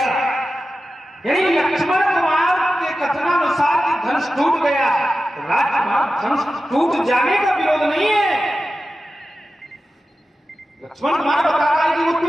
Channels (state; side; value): normal; both; correlation 0.93